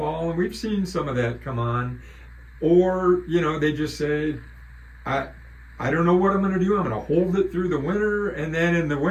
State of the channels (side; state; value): both; identical; correlation 1.00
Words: and we've seen some of that come on. Or, they just say, I don't know what I'm going to do. I'm going to hold it through the winter, and then in the